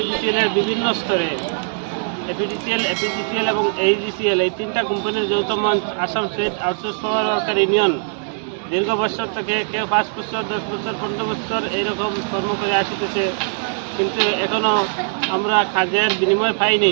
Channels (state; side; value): silent; left; 65 dB below the other